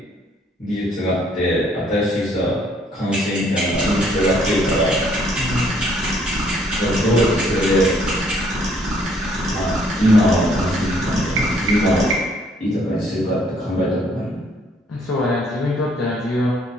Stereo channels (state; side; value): normal; both; correlation 0.65